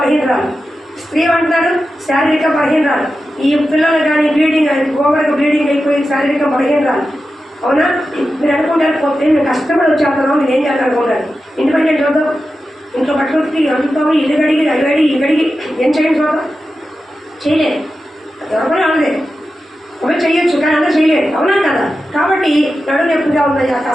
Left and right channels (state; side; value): normal; both; correlation 0.91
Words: స్త్రీ అంటున్నారు శారీరక బలహీనరాలు. ఈ పిల్లలు కానీ ఓవర్గా బ్లీడింగ్ అయిపోయి శారీరక బలహీనరాలు. అవునా? మీరు అనుకుంటారు పోతే మేము కష్టపడి వచ్చేస్తున్నాం, మీరు ఏం చేస్తారు అనుకుంటారు. ఇండిపెండెంట్ చూద్దాం, ఇంట్లో బట్టలు అందుతాము, ఇల్లు గడిగి ఇగడిగి ఏం చేయండి చూద్దాం, చేయలేదు. ఎవరికైనా అనదే, ఒకవేళ చేయొచ్చు కానీ అందరూ చేయలేదు, అవునా కదా? కాబట్టి నడుము నొప్పిగా ఉందయ్యా,